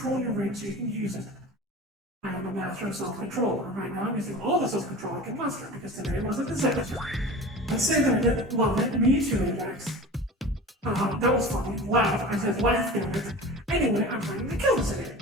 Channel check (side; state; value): both; normal; correlation 0.36